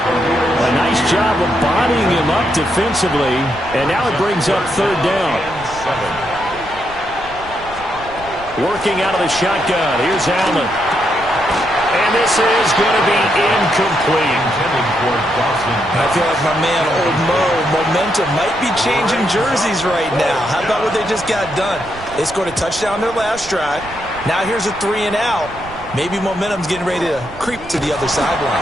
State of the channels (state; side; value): noise; right; rumble, 18 dB below the sound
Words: A nice job of bodying him up defensively. And now it brings up 3rd down. Working out of the shotgun. Here's Allen. And this is going to be incomplete. I feel like my man, Old Mo, momentum might be changing jerseys right now. How about what they just got done? They scored a touchdown their last drive. Now here's a 3 and out. Maybe momentum's getting ready to creep to the other